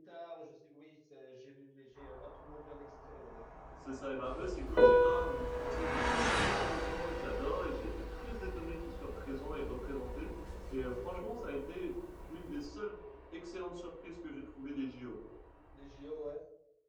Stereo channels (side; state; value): both; identical; correlation 1.00